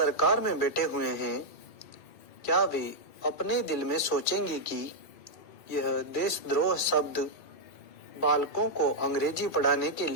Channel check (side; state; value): right; late; 2.3 ms